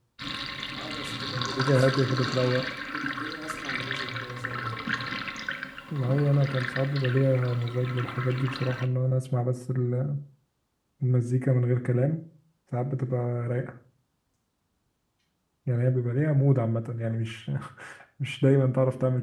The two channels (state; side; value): identical; both; correlation 1.00